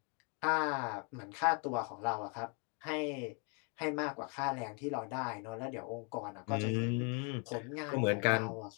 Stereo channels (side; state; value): right; quieter; 36.5 dB